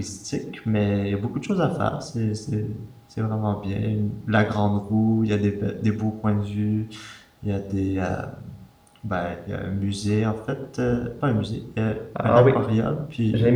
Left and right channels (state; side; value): identical; both; correlation 1.00